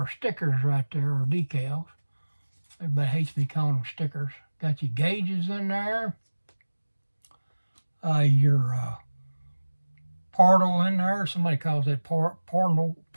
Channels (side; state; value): both; inverted; correlation -1.00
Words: stickers right there, our decals. Everybody hates me calling them stickers. Got your gauges in there. Your portal in there. Somebody calls that portal.